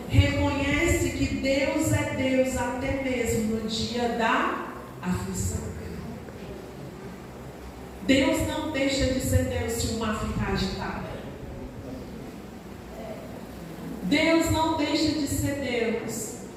reconhece que Deus é Deus até mesmo no dia da aflição. Deus não deixa de ser Deus se o mar ficar agitado. Deus não deixa de ser Deus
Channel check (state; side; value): identical; both; correlation 1.00